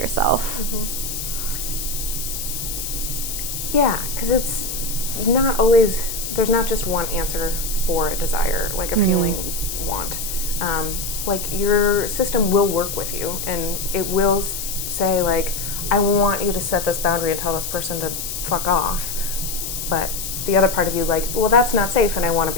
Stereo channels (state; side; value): noise; left; hiss, 5 dB below the sound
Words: Yeah, because it's not always, there's not just one answer for a desire, like a feeling want. Like, your system will work with you, and it will say, like, I want you to set this boundary and tell this person to fuck off, but the other part of you, like, well, that's not safe, and I want to